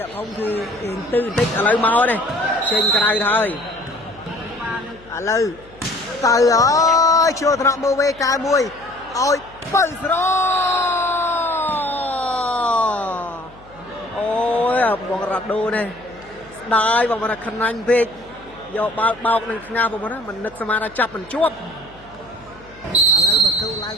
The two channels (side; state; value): left; noise; hum, 24 dB below the sound